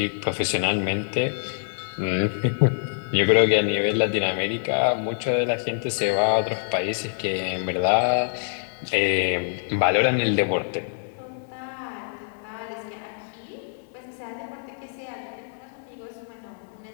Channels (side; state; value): right; silent; 62 dB below the other